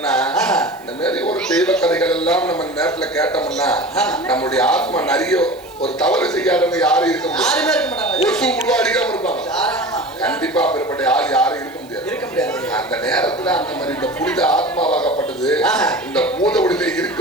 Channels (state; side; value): noise; right; hiss, 26 dB below the sound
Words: இந்த மாதிரி ஒரு தெய்வ கதைகள் எல்லாம் நம்ம நேரத்துல கேட்டோம்னா நம்மளுடைய ஆத்மா நிறைய ஒரு தவறு செய்யாதவங்க யாரும் இருக்க முடியாது. ஒரு சூடு அடிக்காம இருப்பாங்க. கண்டிப்பா பெறப்பட்ட யாரும் இருக்க முடியாது. அந்த நேரத்துல அந்த மாதிரி இந்த புனித ஆத்மாவாகப்பட்டது இந்த பூத உடலில்